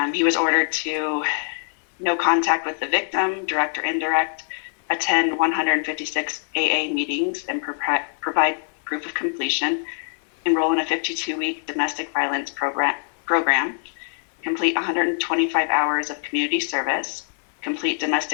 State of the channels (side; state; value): right; silent; 63 dB below the other